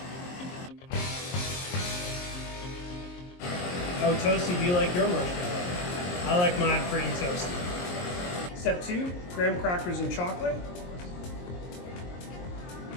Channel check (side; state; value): right; late; 23 ms